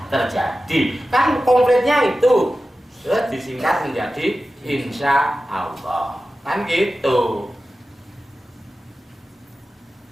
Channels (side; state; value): both; normal; correlation 0.94